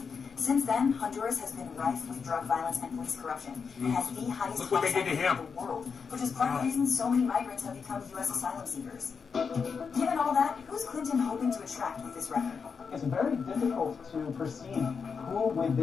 Since then, Honduras has been rife with drug violence and police corruption. It has the highest Look what they did to homicide rate him. in the world, which is part of the reason so many migrants have become U.S. asylum seekers. Given all that, who's Clinton hoping to attract with this record? It's very difficult to perceive who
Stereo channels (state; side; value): quieter; right; 5.7 dB